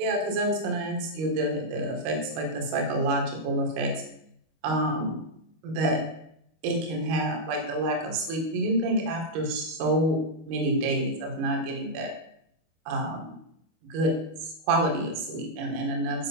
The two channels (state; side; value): late; left; 25 ms